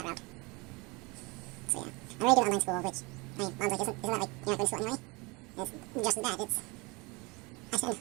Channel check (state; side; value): quieter; left; 26.6 dB